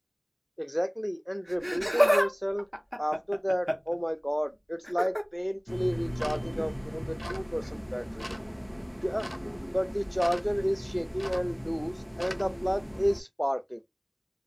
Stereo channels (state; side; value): identical; both; correlation 1.00